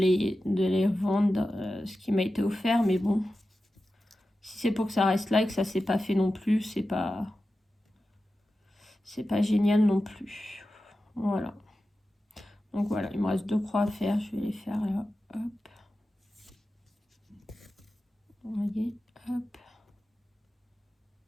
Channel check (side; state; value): both; normal; correlation 0.93